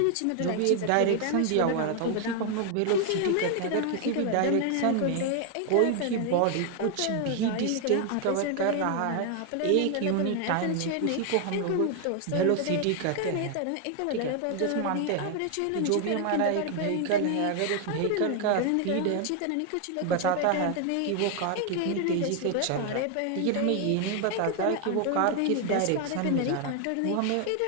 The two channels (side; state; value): both; different; correlation 0.00